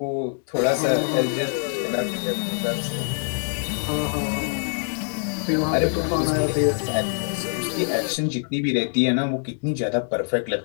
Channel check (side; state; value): right; silent; 62 dB below the other